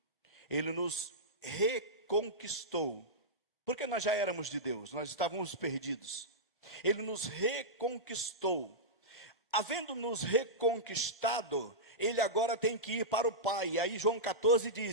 ele nos reconquistou, porque nós já éramos de Deus, nós estávamos perdidos. Ele nos reconquistou. Havendo nos reconquistado, ele agora tem que ir para o Pai. E aí João 14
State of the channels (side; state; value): both; normal; correlation -0.12